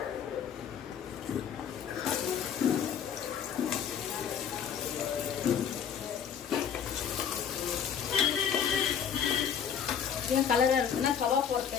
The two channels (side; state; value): right; quieter; 8.0 dB